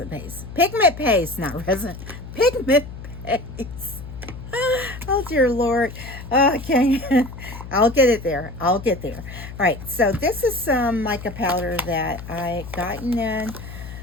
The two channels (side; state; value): left; noise; hum, 12 dB below the sound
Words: paste. Pigment paste, not resin. Pigment paste. Oh dear Lord. Okay, I'll get it there. I'll get there. All right, so this is some mica powder that I gotten in